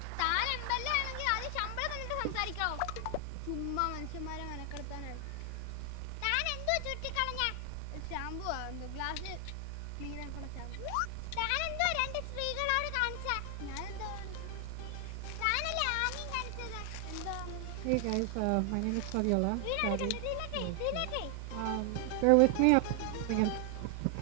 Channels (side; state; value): both; different; correlation 0.00